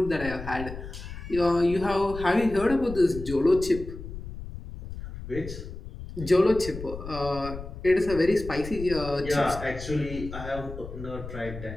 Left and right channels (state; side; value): noise; left; rumble, 10 dB below the sound